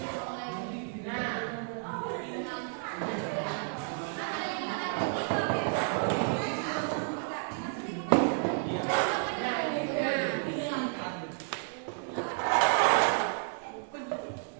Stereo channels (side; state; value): left; silent; 57 dB below the other